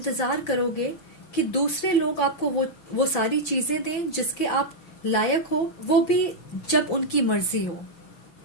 करोगे कि दूसरे लोग आपको वो सारी चीजें दें जिसके आप लायक हो, वो भी जब उनकी मर्जी हो।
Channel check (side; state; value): right; late; 5.9 ms